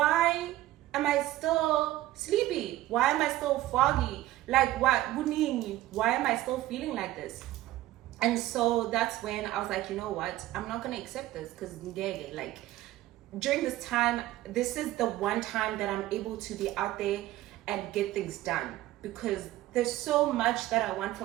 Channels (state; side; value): quieter; left; 15.6 dB